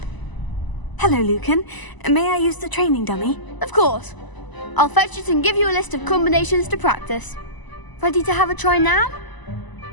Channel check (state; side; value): late; right; 1.0 ms